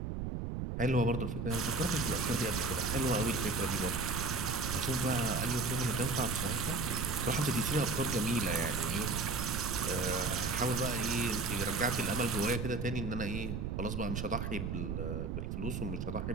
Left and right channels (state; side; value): noise; right; rumble, 3 dB below the sound